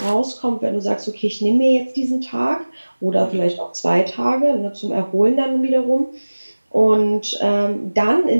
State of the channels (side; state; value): both; inverted; correlation -1.00